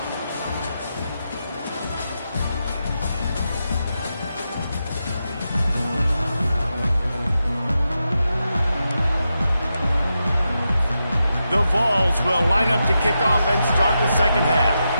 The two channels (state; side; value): inverted; both; correlation -0.87